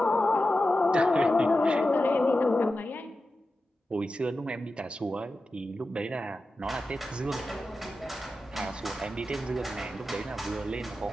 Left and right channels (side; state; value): both; normal; correlation 0.92